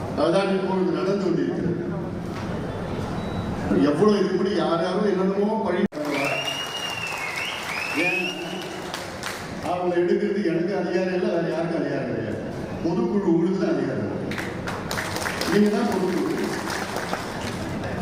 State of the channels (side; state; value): both; identical; correlation 1.00